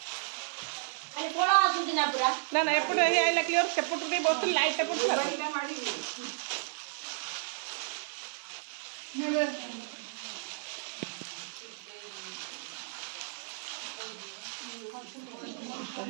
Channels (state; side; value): silent; left; digital silence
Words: ना ना एपटे आइला क्लियर सेपटे बस लाइट पड़ता